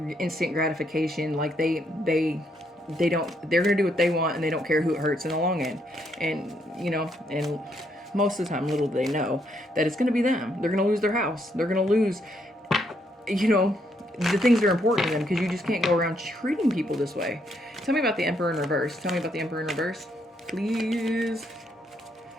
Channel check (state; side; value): normal; both; correlation 0.74